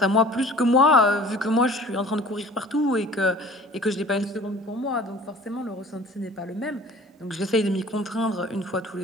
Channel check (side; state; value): both; normal; correlation 0.47